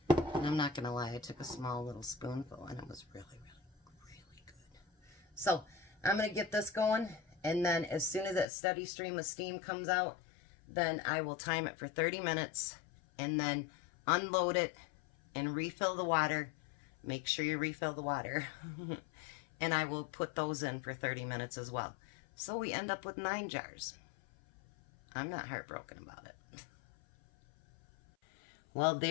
And I'm not going to lie, I took a small little spoonful and it was really, really, really good. So I'm going to get this going, and then as soon as that steady stream of steam comes out, then I will time it for 30 minutes and then unload it and refill the water. Make sure you refill the water. And I will put those in for 30 minutes as well. So we end up with 9 jars. I'm not heartbroken about it. Well,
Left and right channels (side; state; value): right; drops out; at 8.5 s